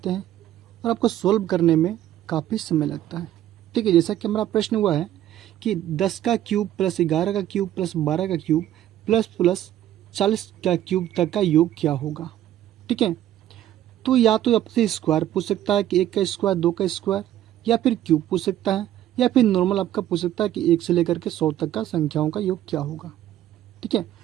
हैं और आपको सॉल्व करने में काफ़ी समय लगता है। ठीक है, जैसा कि हमारा प्रश्न हुआ है कि 10 का क्यूब प्लस 11 का क्यूब प्लस 12 का क्यूब प्लस प्लस 40 का क्यूब तक का योग क्या होगा। ठीक है, तो या तो आपसे स्क्वायर पूछ सकता है कि 1 का स्क्वायर, 2 का स्क्वायर, या फिर क्यूब पूछ सकता है, या फिर नॉर्मल आपका पूछ सकता है कि 1 से लेकर के 100 तक का संख्याओं का योग क्या होगा। ठीक है,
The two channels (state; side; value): quieter; left; 12.5 dB